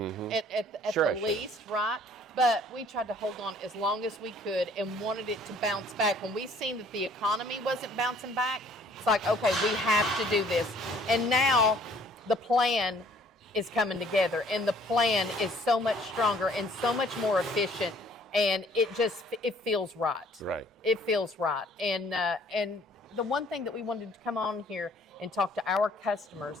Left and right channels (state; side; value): normal; both; correlation 0.57